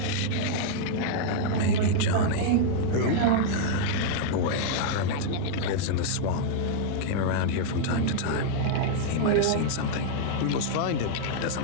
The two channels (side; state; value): both; different; correlation -0.01